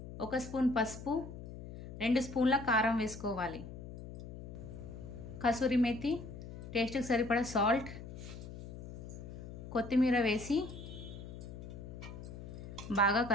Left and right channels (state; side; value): noise; left; hum, 11 dB below the sound